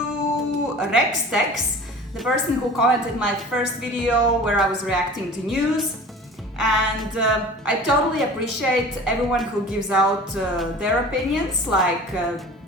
Rex Tex, the person who commented my first video where I was reacting to news. And I totally appreciate everyone who gives out their opinions, like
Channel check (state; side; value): normal; both; correlation 0.41